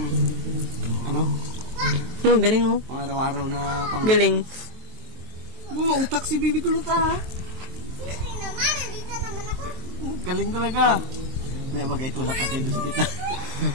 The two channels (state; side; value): late; left; 23 ms